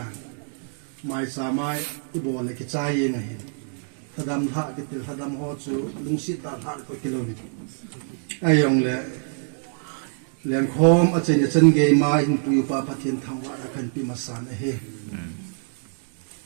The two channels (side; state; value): left; silent; 62 dB below the other